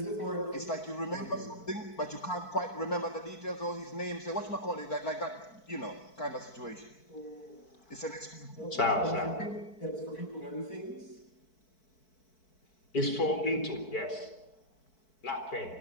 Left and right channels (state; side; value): late; right; 4.6 ms